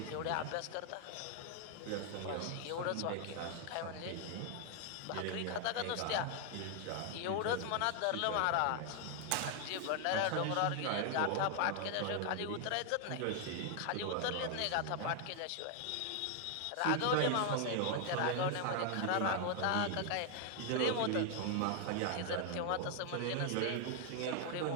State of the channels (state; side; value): different; both; correlation 0.00